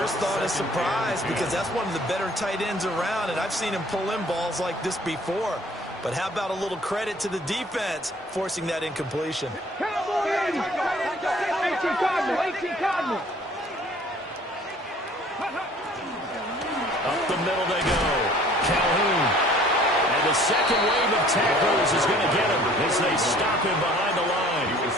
thought is surprise, because that's one of the better tight ends around, and I've seen him pull in balls like this before. But how about a little credit to the defense forcing that incompletion? Up the middle they go. Calhoun. And the second wave of tacklers is going to get him as they stop him behind the line.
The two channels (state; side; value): normal; both; correlation 0.54